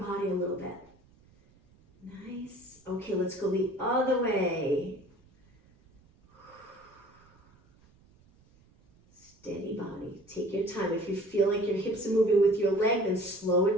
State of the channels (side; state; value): right; noise; rumble, 30 dB below the sound